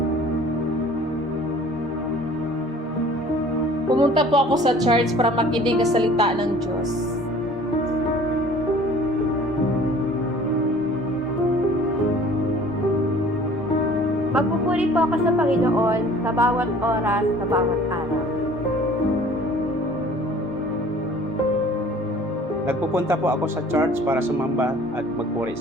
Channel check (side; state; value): both; normal; correlation 0.50